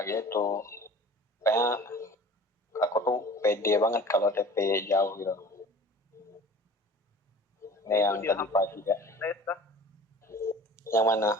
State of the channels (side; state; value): both; normal; correlation 0.43